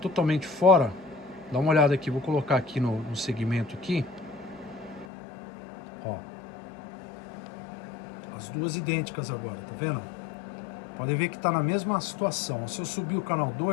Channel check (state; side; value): drops out; right; at 5.1 s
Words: fora? Dá uma olhada aqui, vou colocar aqui no segmento aqui. Ó. As duas idênticas agora, tá vendo? Podem ver que está na mesma situação. Se eu subir o canal